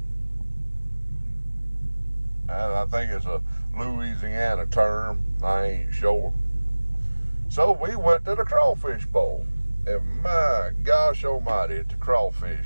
And I think it's a Louisiana term. I ain't sure. So we went to the crawfish bowl. And my gosh almighty, it's a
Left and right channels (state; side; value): inverted; both; correlation -1.00